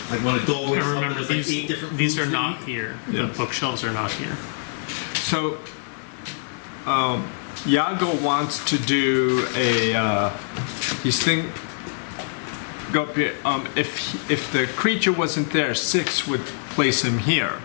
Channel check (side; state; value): right; silent; digital silence